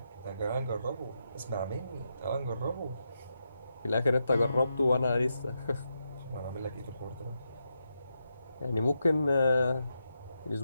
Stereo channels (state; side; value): inverted; both; correlation -0.84